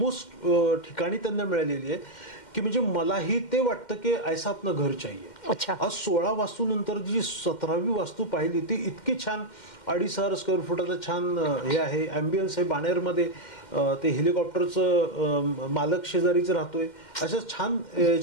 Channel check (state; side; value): late; right; 2.1 ms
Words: ठिकाणी त्यांना मिळालेली आहे की म्हणजे मलाही ते वाटतं की ऐसा आपलं घर चाहिए. आज 16 वास्तू नंतर जी 17वी वास्तू पाहिली, ती इतकी छान, 2,500 स्क्वेअर फुटाचं छान हे आहे, ॲम्बियन्स आहे. बाणेरमध्ये ते हेलिकॉप्टरचं मालक शेजारीच राहतोय, अशा छान